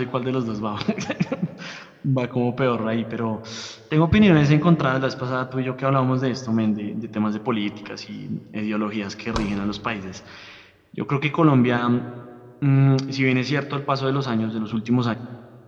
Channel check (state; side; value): identical; both; correlation 1.00